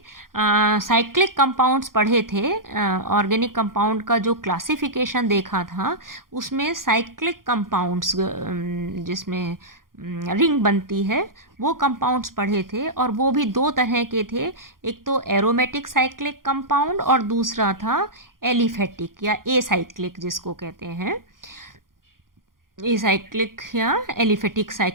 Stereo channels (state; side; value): late; left; 0.91 ms